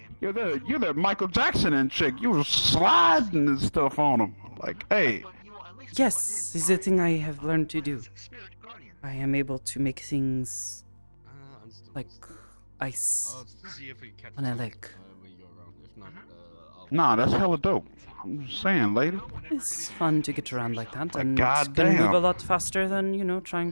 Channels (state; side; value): inverted; both; correlation -1.00